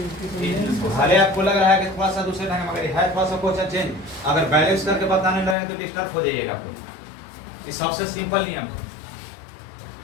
आपको लग रहा है कि थोड़ा सा दूसरे ढंग मगर है थोड़ा सा क्वेश्चन चेंज, अगर बैलेंस करके बताने लगे तो डिस्टर्ब हो जाइएगा आपको। ये सबसे सिंपल नियम,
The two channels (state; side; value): drops out; right; at 5.6 s